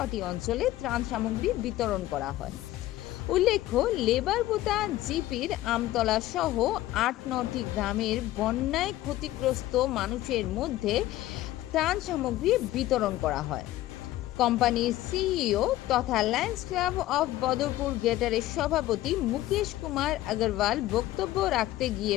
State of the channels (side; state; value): right; quieter; 15.4 dB